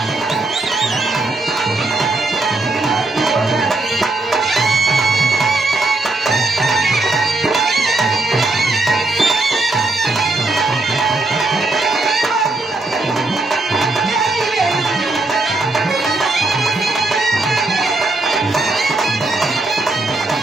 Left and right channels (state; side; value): quieter; left; 3.0 dB